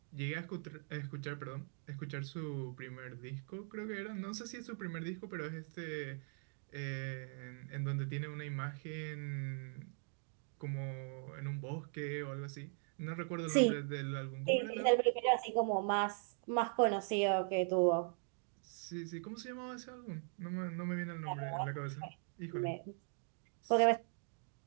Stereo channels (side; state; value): left; silent; 51 dB below the other